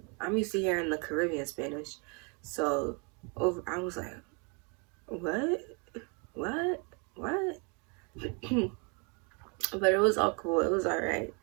I'm used to hearing the Caribbean Spanish. So I was like, what? But it was all cool. It was all right.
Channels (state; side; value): quieter; left; 34.6 dB